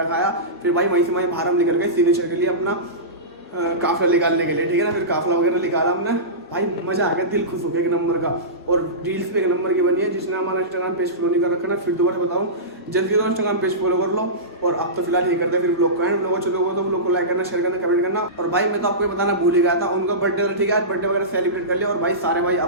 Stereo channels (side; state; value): both; normal; correlation -0.20